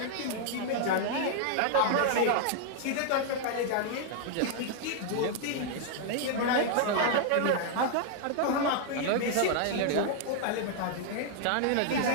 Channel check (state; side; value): different; both; correlation 0.00